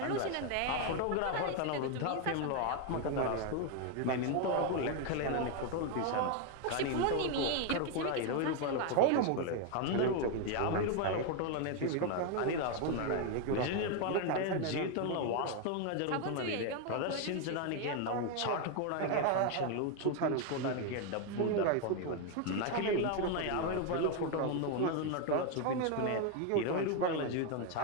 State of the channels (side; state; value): both; different; correlation 0.01